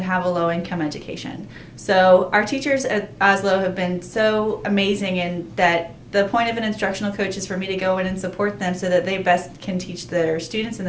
have a low-income education. So our teachers at Oslo have been so amazing in that the point of an instructional coach is for me to go in and support them so that they best can teach their students and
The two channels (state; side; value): identical; both; correlation 1.00